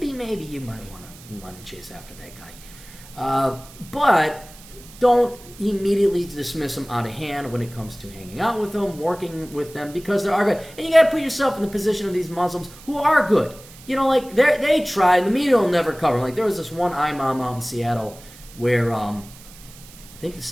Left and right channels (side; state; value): right; noise; hiss, 20 dB below the sound